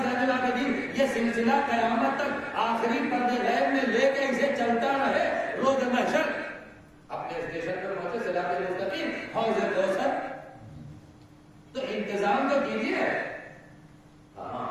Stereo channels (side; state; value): both; identical; correlation 1.00